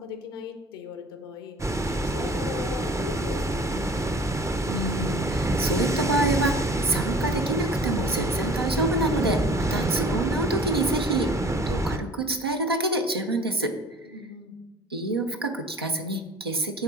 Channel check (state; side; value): normal; both; correlation 0.46